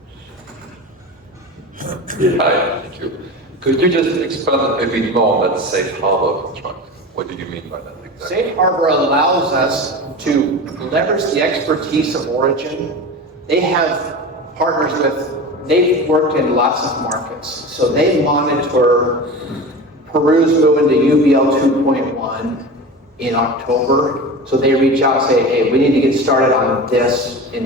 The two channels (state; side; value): normal; both; correlation 0.30